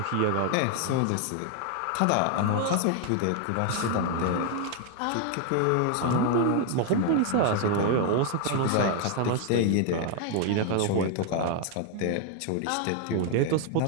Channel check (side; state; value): both; different; correlation 0.00